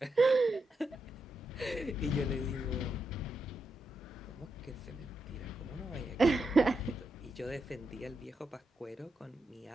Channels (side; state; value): both; normal; correlation 0.85